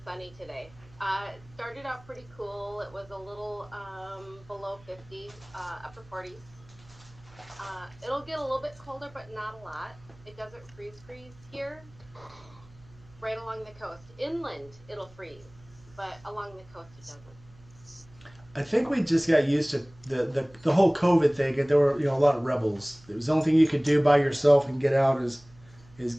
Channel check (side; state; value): right; noise; hum, 25 dB below the sound